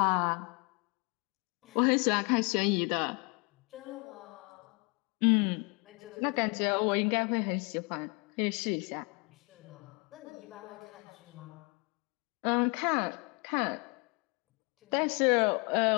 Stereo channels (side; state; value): right; quieter; 32.0 dB